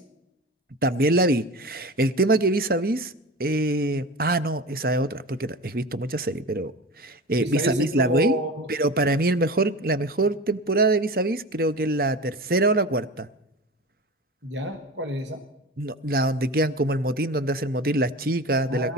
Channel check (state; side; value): normal; both; correlation 0.32